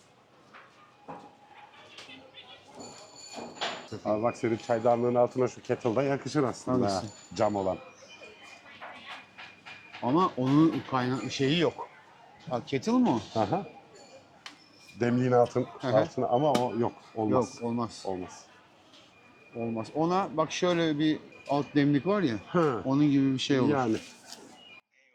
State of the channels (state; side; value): identical; both; correlation 1.00